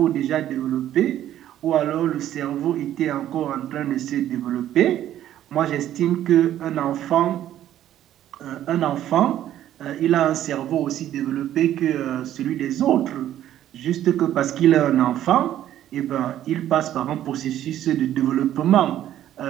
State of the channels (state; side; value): quieter; left; 12.0 dB